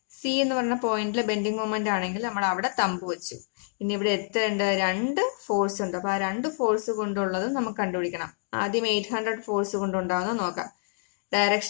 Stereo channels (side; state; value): right; silent; digital silence